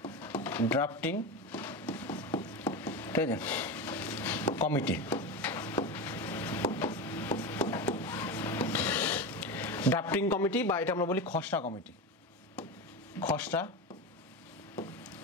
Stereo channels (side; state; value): both; normal; correlation 0.21